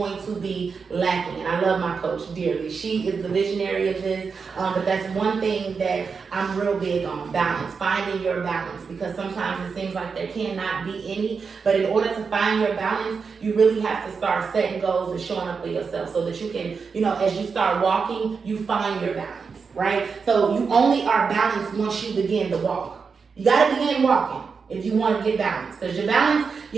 to be lacking. And I love my coach dearly. She is the visionary of this, but that's one thing that I'm real big on: balance, finding your balance, because sometimes it seems like there cannot be any, but in order to find your balance, you really have to start setting goals and showing up for yourself so that you can, as you start walking, you find your balance. Right? So you only are balanced once you begin to walk. You got to begin walking if you want to get balanced. Because your balance,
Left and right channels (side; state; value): left; quieter; 5.4 dB